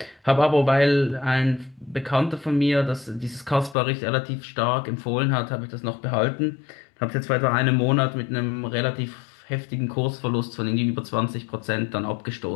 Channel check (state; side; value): drops out; right; at 3.8 s